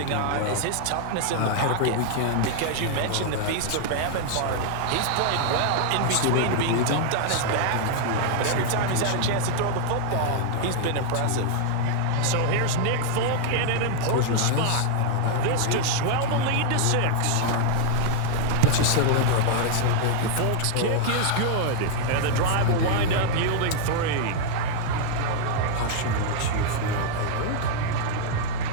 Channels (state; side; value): different; both; correlation 0.00